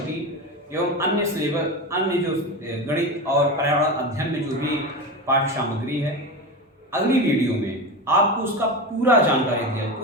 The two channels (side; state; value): both; normal; correlation 0.22